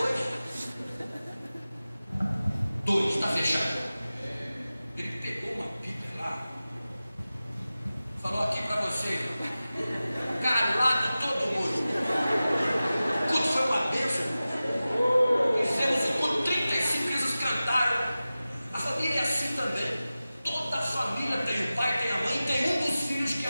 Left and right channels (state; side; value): inverted; both; correlation -0.96